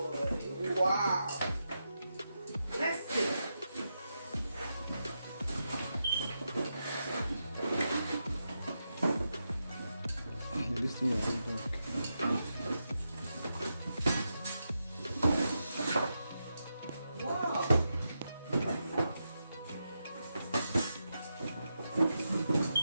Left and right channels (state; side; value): inverted; both; correlation -0.87